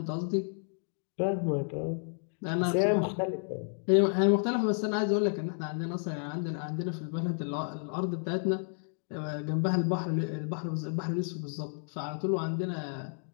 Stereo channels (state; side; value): silent; right; 57 dB below the other